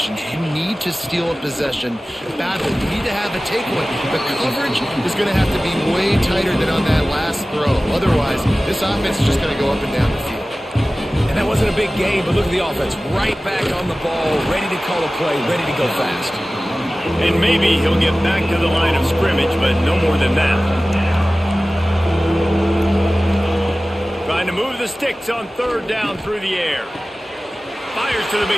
You need to steal a possession badly. You need to have a takeaway. The coverage is going to have to be way tighter than on that last throw. Otherwise, this offense is just going to go up and down the field. And that wasn't a big game, but look at the offense. Right back on the ball, ready to call a play, ready to go fast. And maybe he'll get back to the line of scrimmage, but no more than that. Trying to move the sticks on 3rd down through the air. Fires to the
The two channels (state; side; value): normal; both; correlation 0.97